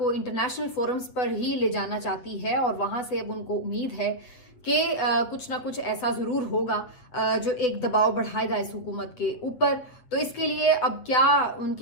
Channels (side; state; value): right; late; 8.0 ms